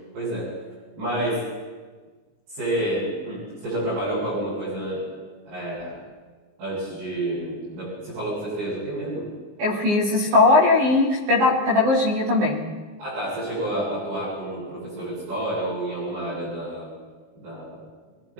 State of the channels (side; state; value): left; late; 19 ms